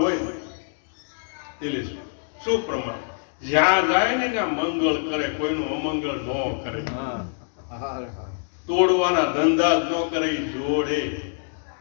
હોય એટલે શું પ્રમાણ? જ્યાં જાય ને ત્યાં મંગળ કરે, કોઈનું અમંગળ ન કરે, તોડવાના ધંધા ન કરે, જોડે.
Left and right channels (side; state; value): right; silent; digital silence